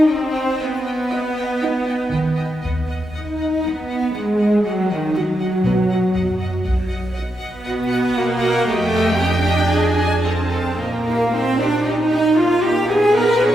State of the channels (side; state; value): both; normal; correlation 0.84